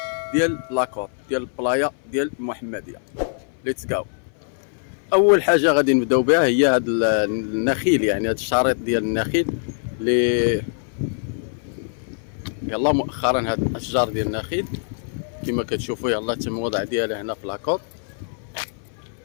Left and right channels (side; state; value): right; silent; 60 dB below the other